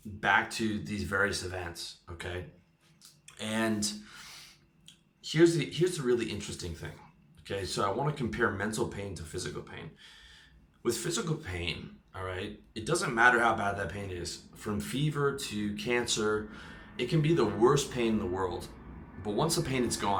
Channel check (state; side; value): identical; both; correlation 1.00